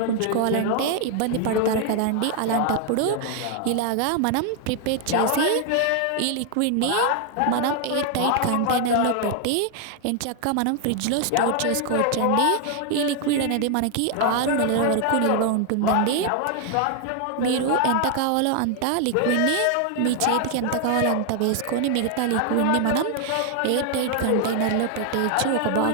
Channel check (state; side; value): different; both; correlation 0.00